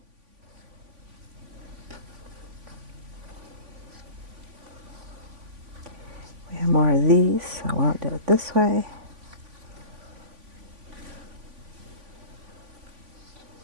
We have more of these, so I won't do it this way.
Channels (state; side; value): late; left; 3.5 ms